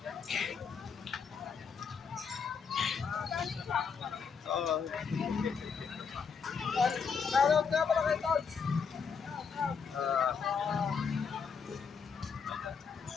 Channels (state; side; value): quieter; right; 6.0 dB